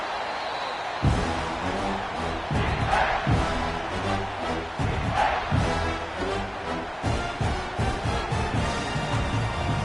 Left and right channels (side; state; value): both; identical; correlation 1.00